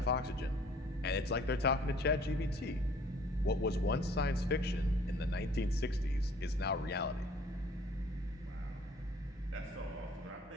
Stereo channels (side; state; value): both; normal; correlation 0.55